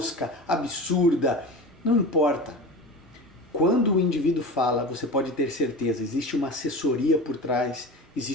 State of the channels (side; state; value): both; normal; correlation 0.31